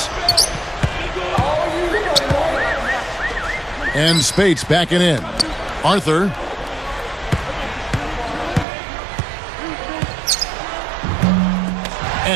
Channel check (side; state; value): left; drops out; at 8.7 s